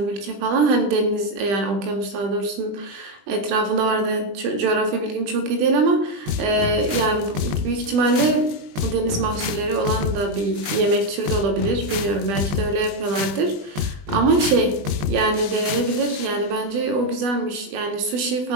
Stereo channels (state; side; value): late; left; 19 ms